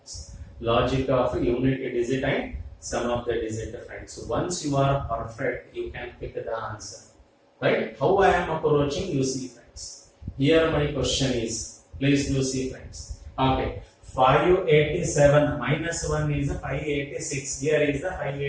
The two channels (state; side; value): identical; both; correlation 1.00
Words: Logic of unit digit and sum of the digit friends. Once you are perfect, you can pick the answer. Right? How I am approaching, you see friends. Here my question is, please do see friends. Okay. 587 minus 1 is 586. Here is the